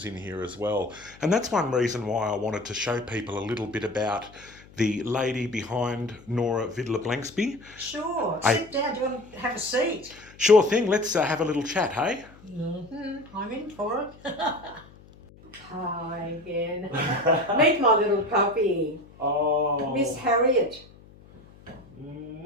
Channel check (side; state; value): left; noise; hum, 23 dB below the sound